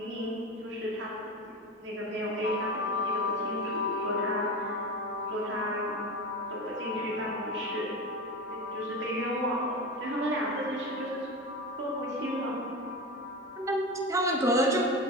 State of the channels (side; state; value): both; normal; correlation 0.25